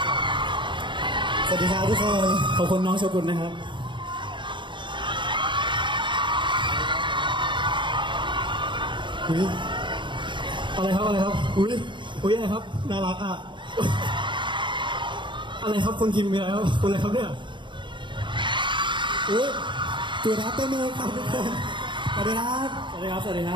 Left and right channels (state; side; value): late; left; 0.23 ms